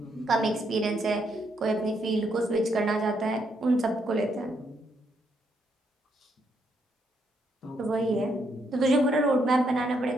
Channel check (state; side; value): normal; both; correlation 0.75